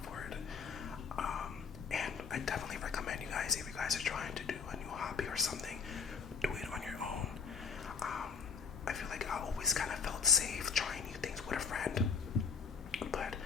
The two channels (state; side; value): quieter; right; 5.7 dB